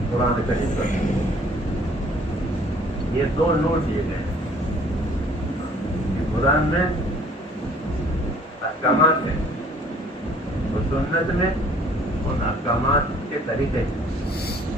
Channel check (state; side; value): normal; both; correlation 0.56